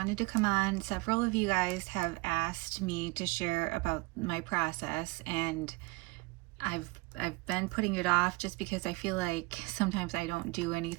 to come on. Several of you guys have asked me to share about my process, and I've been putting it off just because I feel like sometimes I don't do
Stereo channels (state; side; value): quieter; left; 25.2 dB